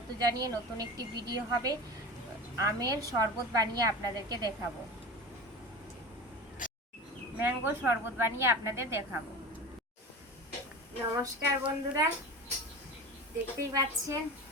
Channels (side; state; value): both; normal; correlation 0.31